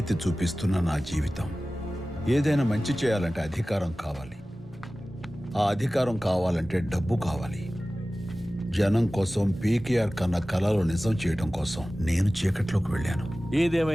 చూపిస్తున్న నా జీవితం. ఏదైనా మంచి చేయాలంటే అధికారం కావాలి, ఆ అధికారం కావాలంటే డబ్బు కావాలి. జనం కోసం, పీకేఆర్ కన్న కళలు నిజం చేయడం కోసం నేను చీకట్లోకి వెళ్ళాను.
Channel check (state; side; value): normal; both; correlation 0.96